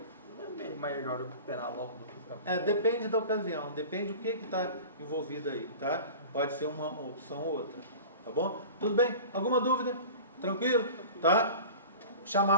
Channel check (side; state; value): both; inverted; correlation -0.37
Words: melhor recuperar logo do que ficar... Depende da ocasião, depende do que está envolvido aí, tá? Pode ser uma opção ou outra, tá bom? Tudo bem? Alguma dúvida? Tranquilo? Tá?